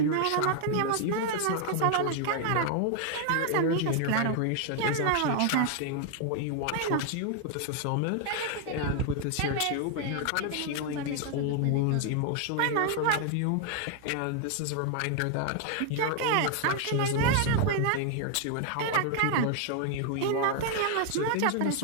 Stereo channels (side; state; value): both; different; correlation 0.00